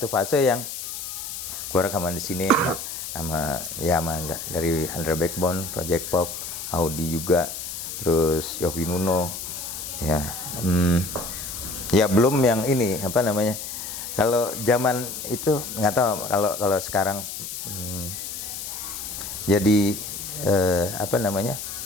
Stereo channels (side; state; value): left; noise; hiss, 7 dB below the sound